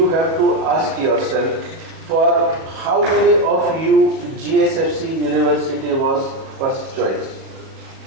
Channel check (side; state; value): left; late; 37 ms